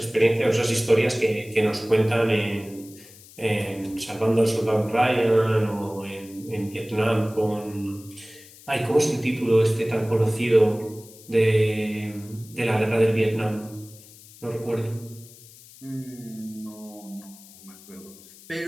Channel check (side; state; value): left; noise; hiss, 21 dB below the sound